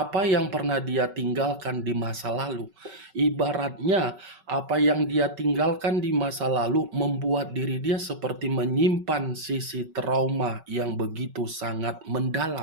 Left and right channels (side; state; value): left; late; 5.3 ms